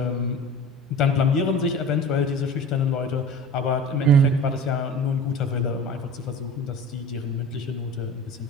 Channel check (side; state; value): both; normal; correlation 0.37